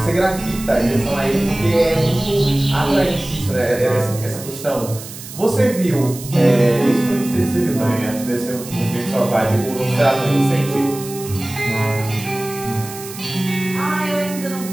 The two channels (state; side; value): noise; right; hiss, 13 dB below the sound